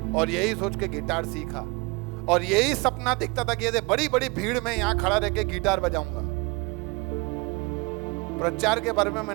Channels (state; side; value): quieter; left; 27.0 dB